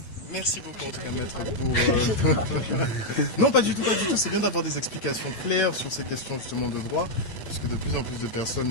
Merci beaucoup, J'ai en tout pas cas, dû maître, parler. pour... Non, pas du tout, pas du tout. C'est bien d'avoir des explications claires sur ces questions justement de droit, parce que de plus en plus de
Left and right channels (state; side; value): late; right; 9.1 ms